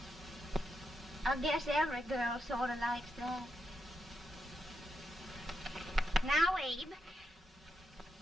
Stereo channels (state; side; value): normal; both; correlation 0.84